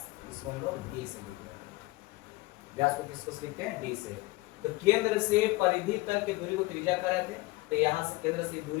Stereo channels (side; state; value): right; quieter; 21.5 dB